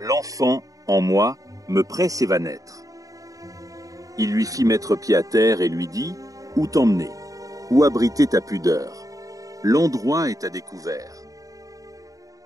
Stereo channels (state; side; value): late; left; 0.17 ms